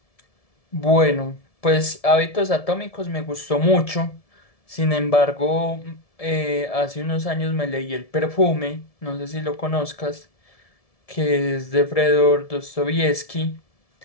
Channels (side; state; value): right; late; 1.7 ms